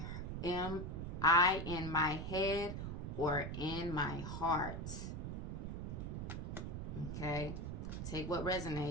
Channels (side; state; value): right; noise; rumble, 4 dB below the sound